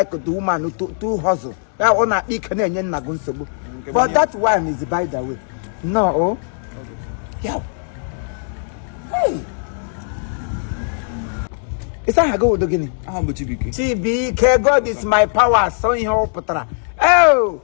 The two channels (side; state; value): right; silent; digital silence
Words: the woman to hustle. I want to eat Canadian Nagunsobu. But that one is by the way. No. Yeah. Hey. Is that a go to Guinea? TBK, God is my power. So in your Patra. Oh,